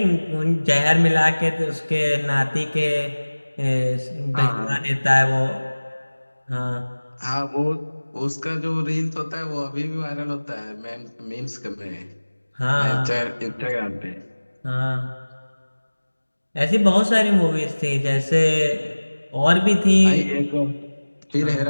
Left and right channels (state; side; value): inverted; both; correlation -1.00